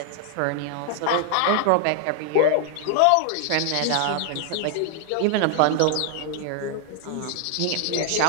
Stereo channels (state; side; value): different; both; correlation 0.00